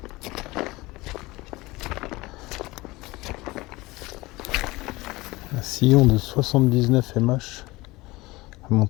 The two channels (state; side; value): quieter; right; 21.1 dB